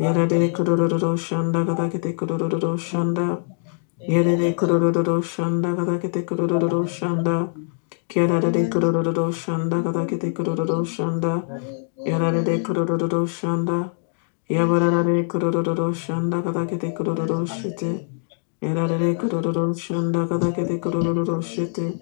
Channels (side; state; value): right; silent; 61 dB below the other